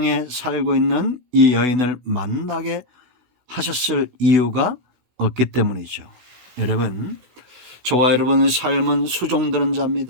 살고 있는 이 여인을 만나게 하셨을 이유가 없기 때문이죠. 여러분, 저와 여러분의 삶은 수종드는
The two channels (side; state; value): left; late; 16 ms